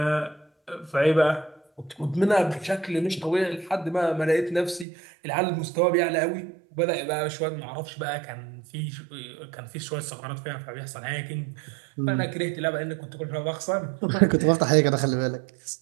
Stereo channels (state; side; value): drops out; left; at 4.9 s